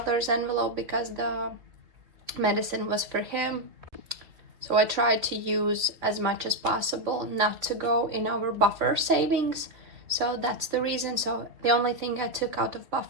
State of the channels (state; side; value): late; left; 3.3 ms